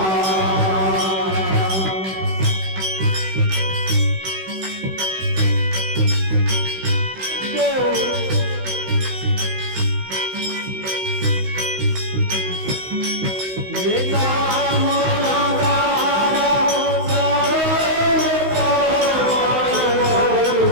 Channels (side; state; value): left; late; 16 ms